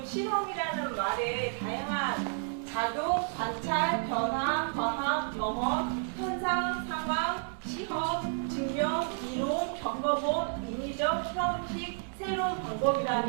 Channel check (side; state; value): left; silent; 57 dB below the other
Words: 실험이라는 말에 다양한 작용, 관찰, 변화, 과학, 경험, 현상, 상황, 시험, 증명, 이론, 겪어본, 인위적, 형식, 새로운